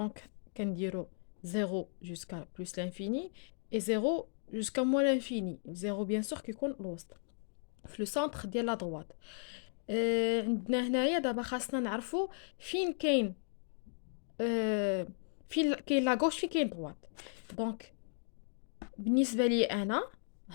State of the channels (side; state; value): right; silent; digital silence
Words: كنديرو 0 jusqu'à plus l'infini et 0 jusqu'à moins l'infini. 0 bien sûr كيكون الوسط في لو سونتر ديال لا droite. عندنا هنايا دابا خاصنا نعرفو فين كاين فين كاين لا غوش فين كاين droite. دونك بالنسبة لي أنا